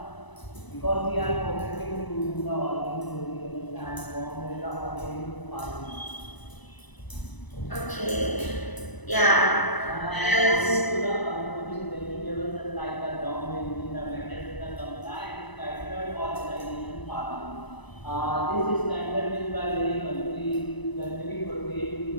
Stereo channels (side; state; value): right; late; 1.0 ms